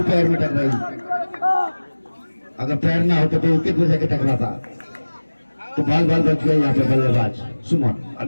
पैर में टकराई। अगर पैर ना होता तो विकेट में जाके टकराता, तो बाल बाल बच गए यहाँ पे बल्लेबाज सुमन।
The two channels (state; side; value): inverted; both; correlation -1.00